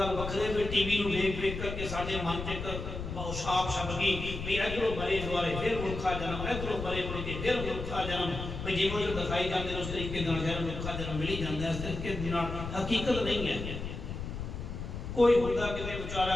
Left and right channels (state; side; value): noise; left; rumble, 6 dB below the sound